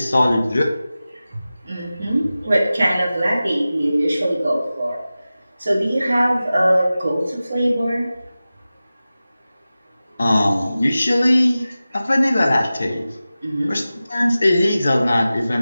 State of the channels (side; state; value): both; inverted; correlation -0.96